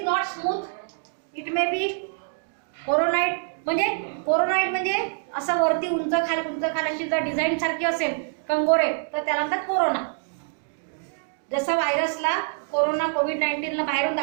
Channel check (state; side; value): silent; left; digital silence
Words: not smooth. It may be कोरोनाइट. म्हणजे कोरोनाइट म्हणजे असं वरती उंच खाली अशी जर डिझाईन सारखी असेल कंगोरे, तर त्याला म्हणतात कोरोना. जसं व्हायरसला कोरोना, कोविड-19 ला बाहेरून